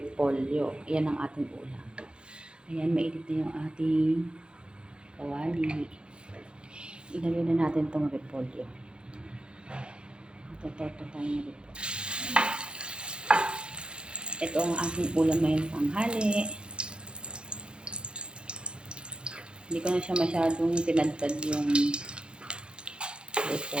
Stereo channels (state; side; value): late; left; 0.053 ms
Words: Yan ang ating ulam. Ayan, mainit na yung ating kawali. Ilagay na natin itong repolyo. Ito tayo ng repolyo. Ito ang ating ulam ngayong tanghali. Hindi ko na siya masyadong tinadtad yung